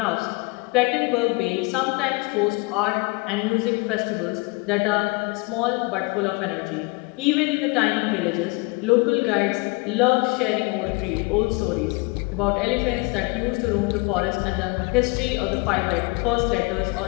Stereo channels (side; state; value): right; quieter; 27.7 dB